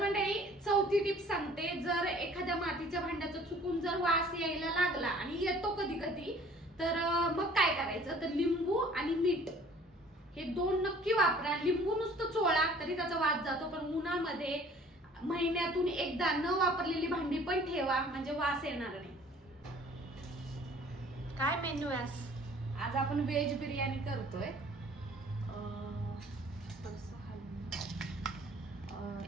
मंडळी चौथी टिप सांगते, जर एखाद्या मातीच्या भांड्याचा चुकून जर वास यायला लागला आणि येतो कधी कधी, तर मग काय करायचं, तर लिंबू आणि मीठ हे 2 नक्की वापरा. लिंबू नुसतं चोळा तरी त्याचा वास जातो, पण उन्हामध्ये महिन्यातून एकदा न वापरलेली भांडी पण ठेवा, म्हणजे वास येणार नाही. काय मेन्यू आहे आज आपण व्हेज बिर्याणी करतोय.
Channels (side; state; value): both; normal; correlation 0.52